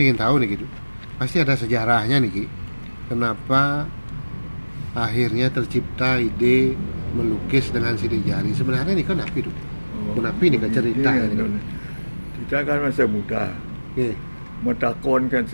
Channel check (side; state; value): both; inverted; correlation -1.00